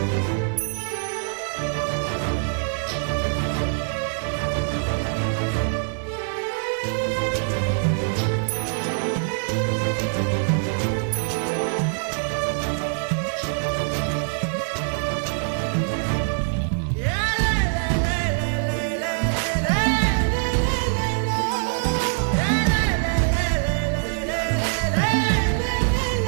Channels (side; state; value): left; silent; digital silence